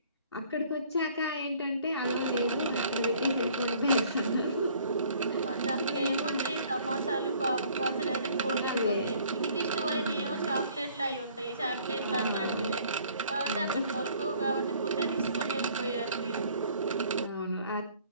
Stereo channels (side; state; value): both; inverted; correlation -0.57